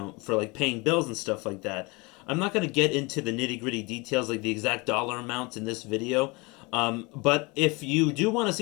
for paying bills and stuff like that. I'm not going to get into the nitty-gritty details, the exact dollar amounts in this video. But if you do want to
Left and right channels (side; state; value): right; quieter; 26.5 dB